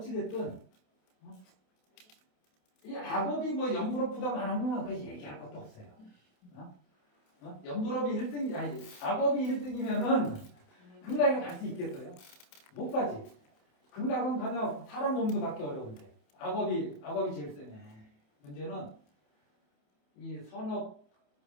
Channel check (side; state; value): right; late; 27 ms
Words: 이 악업이 연불업보다 많으면 그 얘기할 것도 없어요. 연불업이 1등, 악업이 1등이면은 극락에 갈 수 있겠어요? 못 가지. 극락은 그냥 사람 몸도 받기 어려운데. 악업이 제일 세네. 문제는 이